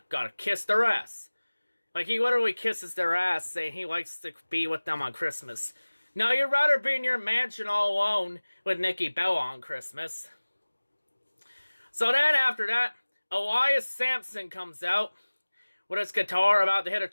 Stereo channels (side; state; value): both; inverted; correlation -1.00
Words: gotta kiss their ass. Like, he literally kisses their ass, saying he likes to be with them on Christmas. No, you'd rather be in your mansion all alone with Nikki Bella on Christmas. So then, after that, Elias Sampson comes out with his guitar about to hit a